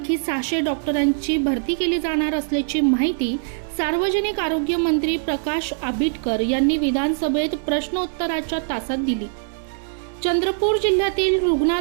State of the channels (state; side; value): silent; left; digital silence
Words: 600 डॉक्टरांची भरती केली जाणार असल्याची माहिती सार्वजनिक आरोग्य मंत्री प्रकाश आंबेडकर यांनी विधानसभेत प्रश्नोत्तराच्या तासात दिली। चंद्रपूर जिल्ह्यातील